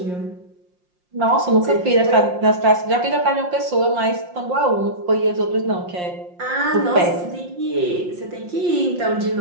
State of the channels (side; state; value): left; late; 5.6 ms